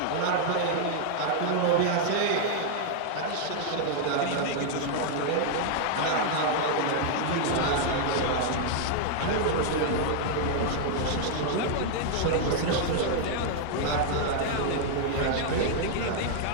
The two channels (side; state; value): both; different; correlation 0.00